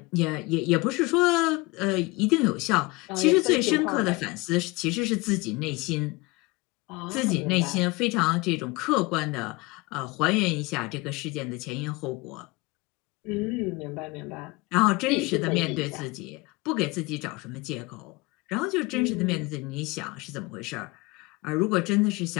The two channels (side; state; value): right; quieter; 24.2 dB